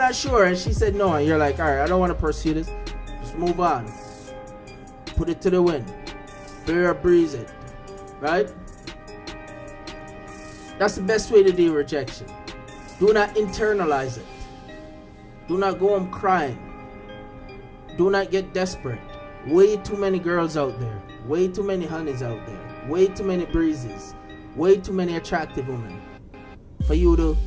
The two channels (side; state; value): both; identical; correlation 1.00